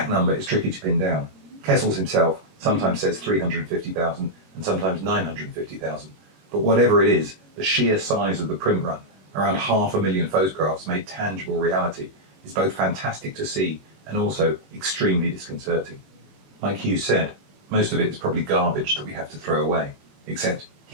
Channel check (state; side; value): late; left; 21 ms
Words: number is tricky to pin down. Kessels himself sometimes says 350,000 and sometimes 950,000. But whatever it is, the sheer size of the print run, around 500,000 photographs made tangible reality, is both fantastic to see and also extremely disconcerting. Like Hughes said, most of it is probably garbage that we have to throw away, except